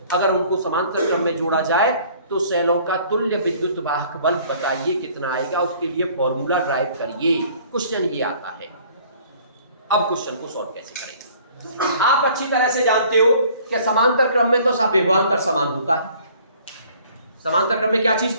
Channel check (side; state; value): both; inverted; correlation -0.55